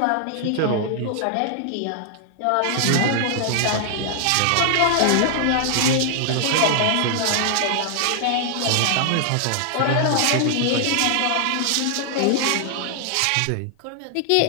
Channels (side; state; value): both; different; correlation 0.00